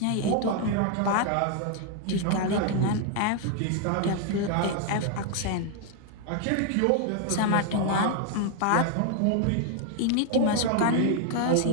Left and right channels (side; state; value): both; different; correlation 0.00